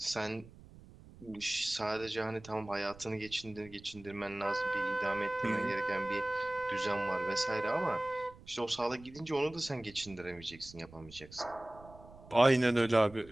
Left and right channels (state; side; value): noise; right; rumble, 20 dB below the sound